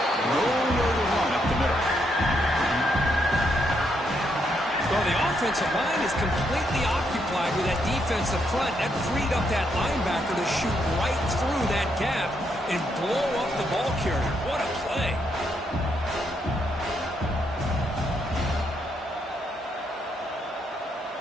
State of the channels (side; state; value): both; normal; correlation 0.77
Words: Nowhere to run up the middle. Well, the offensive line is completely occupied with that defensive front. That freed up that linebacker to shoot right through that gap and blow up the ball carrier. What a play.